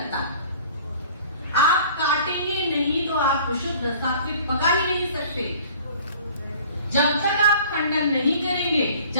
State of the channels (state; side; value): inverted; both; correlation -0.49